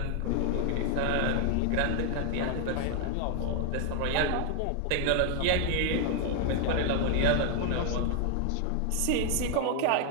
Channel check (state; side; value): different; both; correlation 0.00